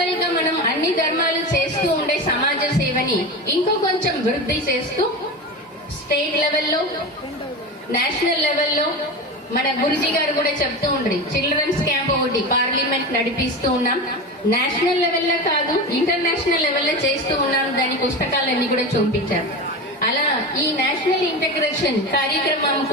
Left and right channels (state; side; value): normal; both; correlation 0.25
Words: గా మనం అన్ని ధర్మాలు చేస్తూ ఉండే సమాజ సేవని ఇంకో కొంచెం వృద్ధి చేస్తూ స్టేట్ లెవెల్లో, నేషనల్ లెవెల్లో మన గురుజీ గారు కూడా చెప్తూ ఉండ్రి, చిల్డ్రన్స్ క్యాంప్ ఒకటి పార్లమెంట్ నడిపిస్తూ ఉన్నాం. నేషనల్ లెవెల్లో కాదు, ఇంటర్నేషనల్ లెవెల్లో చేస్తూ ఉన్నాం. దాని పుస్తకాలన్నీ కూడా చూపించారు. అలా ఈ నేషనల్ ఇంటిగ్రేషన్ కార్యక్రమం